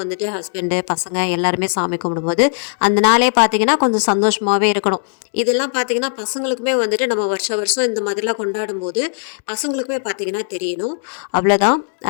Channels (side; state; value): right; silent; digital silence